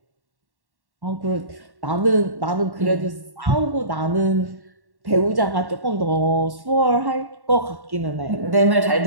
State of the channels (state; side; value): late; left; 1.1 ms